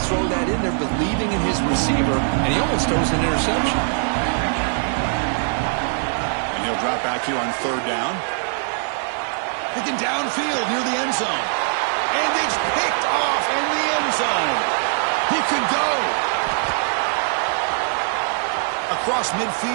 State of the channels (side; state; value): left; silent; 64 dB below the other